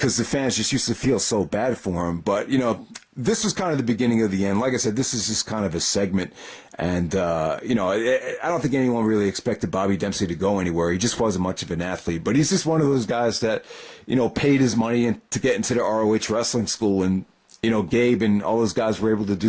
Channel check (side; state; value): both; identical; correlation 1.00